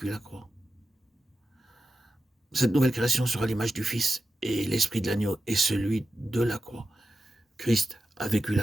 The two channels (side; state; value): both; normal; correlation 0.91